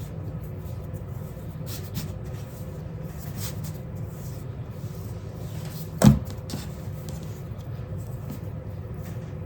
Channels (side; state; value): both; identical; correlation 1.00